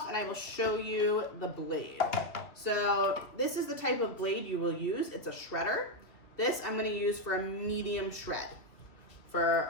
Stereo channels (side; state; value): right; late; 2.4 ms